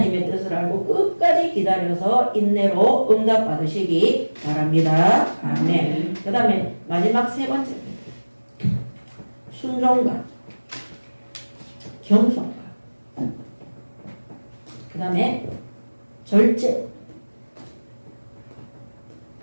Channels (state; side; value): inverted; both; correlation -1.00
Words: 뜻을 알고 끝까지 기다려서 인내로 응답받으시기 바랍니다. 아멘. 그 다음에 마지막 세 번째입니다. 순종과 겸손과 그 다음에 절제.